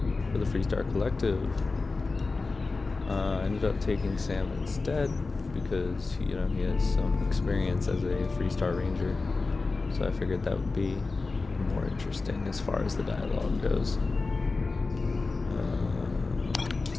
for the Freestar Collective. Ended up taking Sam instead because he has some experience as a Freestar Ranger. So I figured that would be more interesting as far as the dialogue goes.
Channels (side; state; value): right; quieter; 3.8 dB